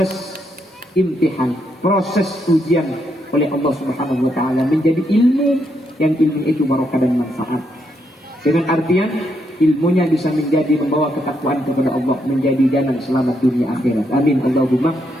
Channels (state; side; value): normal; both; correlation 0.78